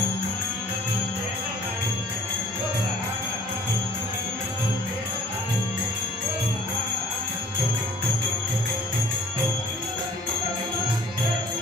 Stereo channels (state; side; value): normal; both; correlation 0.54